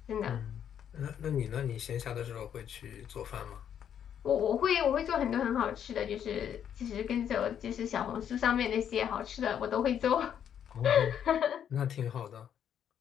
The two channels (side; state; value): right; quieter; 9.1 dB